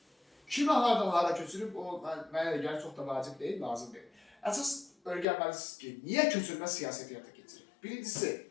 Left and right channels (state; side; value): drops out; right; at 5.2 s